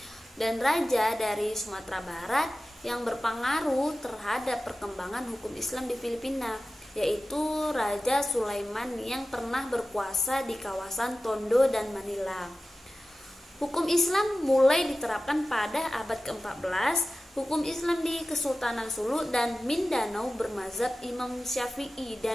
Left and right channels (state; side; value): normal; both; correlation 0.95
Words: dan raja dari Sumatera Barat yang berpengaruh terhadap perkembangan hukum Islam di Filipina, yaitu Raja Sulaiman yang pernah berkuasa di kawasan Tondo dan Manila. Hukum Islam mulai diterapkan pada abad ke-14. Hukum Islam di Kesultanan Sulu dan Mindanao bermazhab Imam Syafi'i